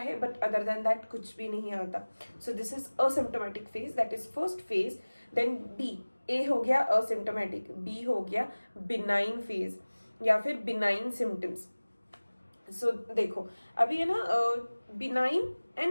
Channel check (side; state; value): both; inverted; correlation -1.00